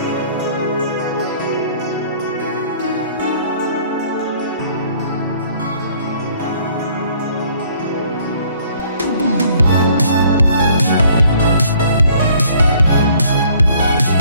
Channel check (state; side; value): inverted; both; correlation -0.59